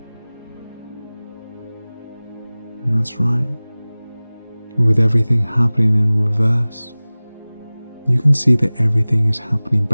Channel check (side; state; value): both; inverted; correlation -0.99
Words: And that's right. And with everything happening in reverse, you can see that everything is happening